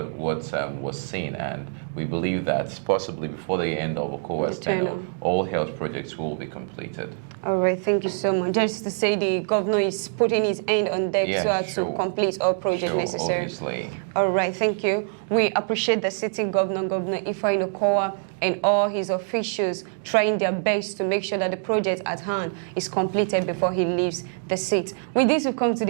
was seen, and we believe that possibly before the end of Okowa's tenure, all health projects will be completed. All right, thank you so much. Just to say, the governor is putting his hand on deck to complete all projects necessary. Obviously. All right, thank you. We appreciate the sitting governor, Governor Ifeanyi Okowa, and all his officials trying their best to make sure that the project at hand is completed before he leaves the seat. With this, we've come to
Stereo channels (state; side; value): silent; left; digital silence